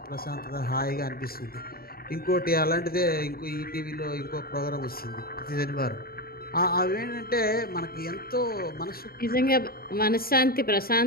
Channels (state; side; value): late; right; 0.44 ms